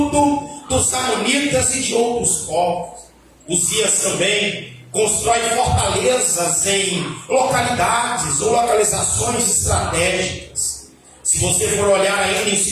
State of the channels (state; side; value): identical; both; correlation 1.00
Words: dos amonitas e de outros povos. Uzias também constrói fortalezas em localidades ou localizações estratégicas. Se você for olhar ainda em